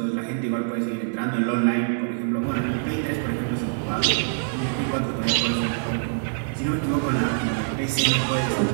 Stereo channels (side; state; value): left; silent; digital silence